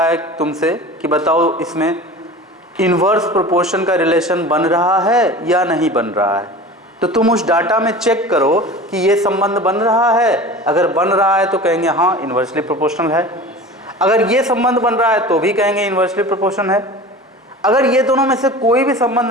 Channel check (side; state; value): both; normal; correlation 0.36